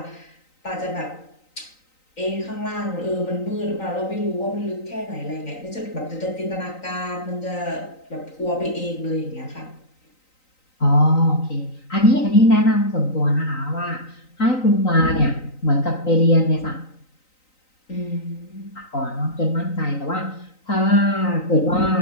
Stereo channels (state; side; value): late; right; 3.9 ms